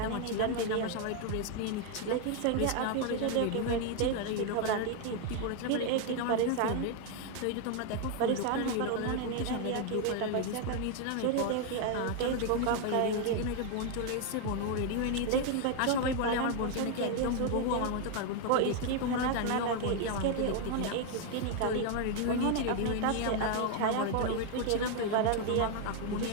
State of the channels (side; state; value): both; different; correlation 0.01